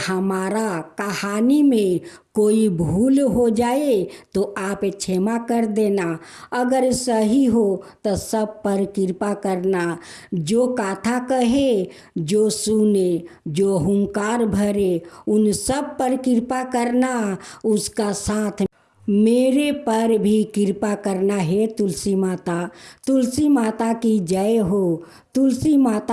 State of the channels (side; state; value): both; identical; correlation 1.00